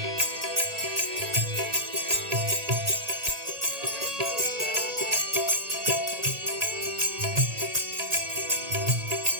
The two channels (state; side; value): late; left; 1.8 ms